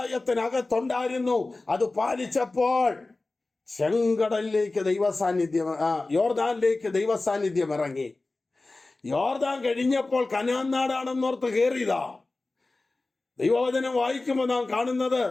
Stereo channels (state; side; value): quieter; right; 3.2 dB